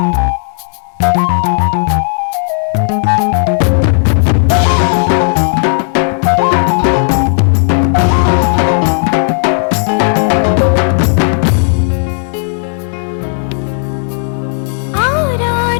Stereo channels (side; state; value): right; silent; digital silence